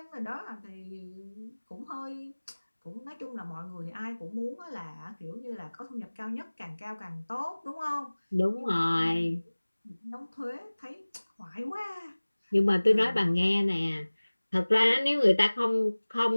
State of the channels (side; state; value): both; inverted; correlation -1.00